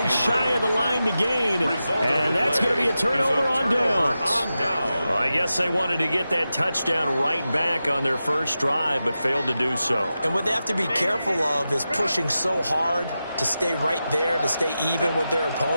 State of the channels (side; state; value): both; inverted; correlation -0.92